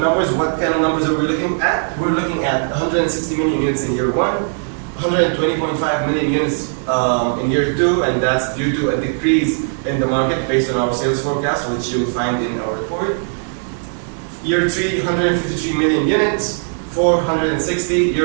what kind of numbers are we looking at? We're looking at 160 million units in year one, 120.5 million units in year two, and that's due to a decrease in the market based on our sales forecast, which you'll find in our report. Year 3, 153 million units, 460,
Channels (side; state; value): left; silent; digital silence